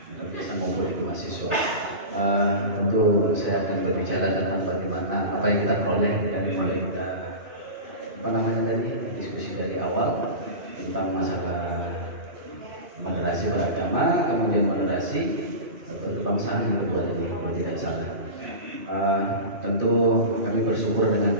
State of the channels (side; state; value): left; late; 2.5 ms